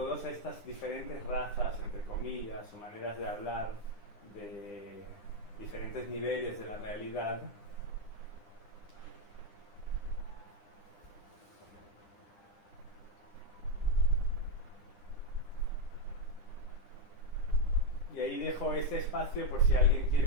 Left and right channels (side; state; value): right; late; 9.9 ms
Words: estas diferentes razas, entre comillas, o maneras de hablar de diferentes niveles de la realidad. Y ahí dejo este espacio por si alguien